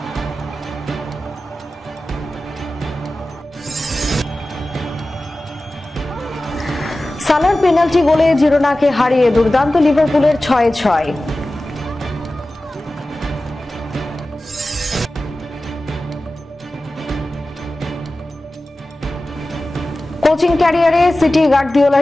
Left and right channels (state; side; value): normal; both; correlation 0.96